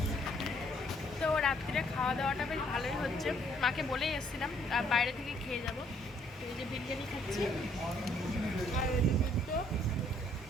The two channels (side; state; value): both; normal; correlation 0.66